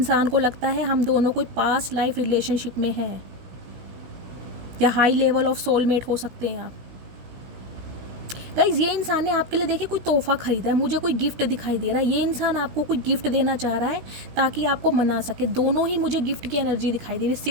को लगता है हम दोनों कोई पास्ट लाइफ रिलेशनशिप में हैं, या हाई लेवल ऑफ सोलमेट हो सकते हैं आप। गाइज ये इंसान ने आपके लिए देखिए कोई तोहफा खरीदा है, मुझे कोई गिफ्ट दिखाई दे रहा है। ये इंसान आपको कोई गिफ्ट देना चाह रहा है ताकि आपको मना सके। दोनों ही मुझे गिफ्ट की एनर्जी दिखाई दे रही है।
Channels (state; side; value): late; left; 17 ms